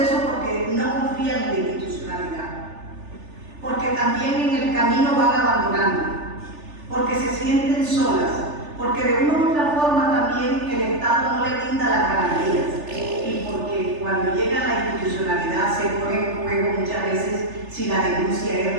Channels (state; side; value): late; left; 3.4 ms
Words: porque no confían en la institucionalidad. Porque también en el camino van abandonando. Porque se sienten solas. Porque de una u otra forma también el Estado no le brinda las garantías. Y porque cuando llega a la institucionalidad se pone en juego muchas veces si la denuncia